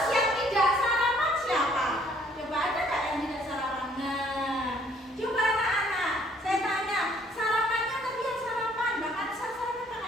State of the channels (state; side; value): normal; both; correlation 0.62